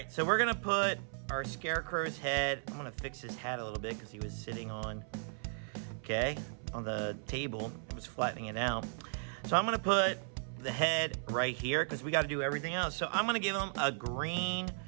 so we're gonna put our Scarecrow's head. I'm gonna fix his hat a little bit because he was sitting on the table. It was flattening it out. So I'm gonna put the head right here because we gotta do everything else. So I'm gonna give him a green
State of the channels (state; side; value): silent; left; 54 dB below the other